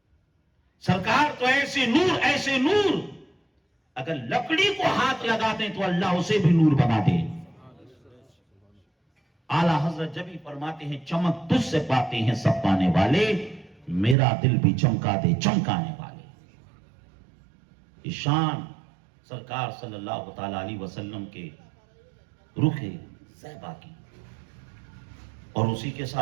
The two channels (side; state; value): left; drops out; at 14.2 s